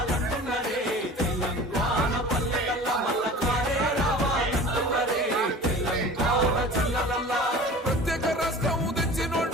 తెలంగాణ పల్లెలల్ల మల్ల కారే రావాలంటున్నరే తెలంగాణ జిల్లలల్ల ప్రత్యేక రాష్ట్రం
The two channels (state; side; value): normal; both; correlation 0.40